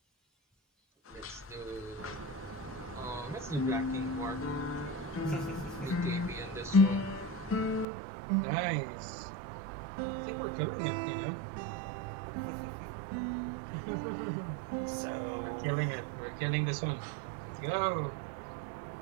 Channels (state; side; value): drops out; left; at 7.9 s